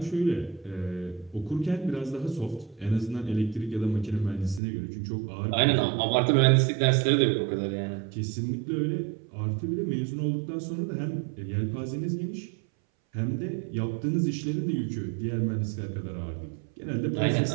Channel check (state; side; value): drops out; left; at 4.6 s